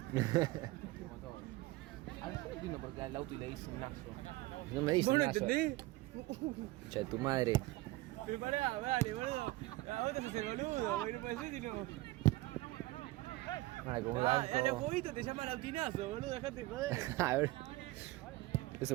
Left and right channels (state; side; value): quieter; left; 19.3 dB